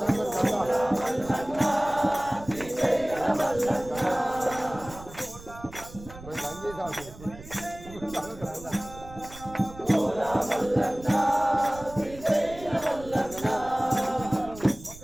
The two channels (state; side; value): noise; right; rumble, 17 dB below the sound